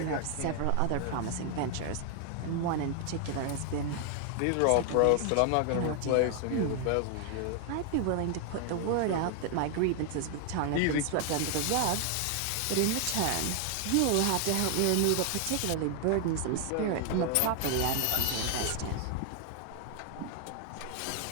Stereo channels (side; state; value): both; different; correlation 0.00